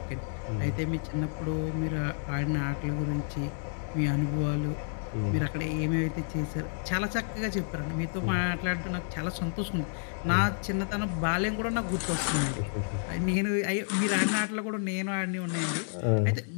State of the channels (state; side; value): silent; right; 58 dB below the other